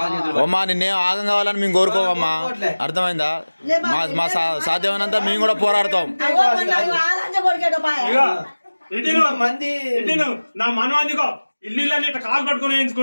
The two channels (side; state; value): both; inverted; correlation -1.00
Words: అమ్మా నిన్నేం ఆగం కావాలని మేము కోరుకోవమ్మా. అర్థమైందా? మా సాధ్యమైనంత మేము కూడా పోరాడతాం. మంది నా మనవాదిగో ఇల్లు కాలు పట్టుకుని